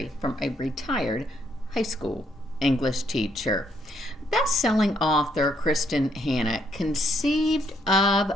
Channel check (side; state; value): both; normal; correlation 0.72